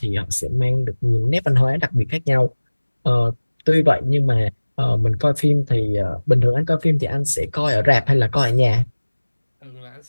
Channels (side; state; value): both; inverted; correlation -1.00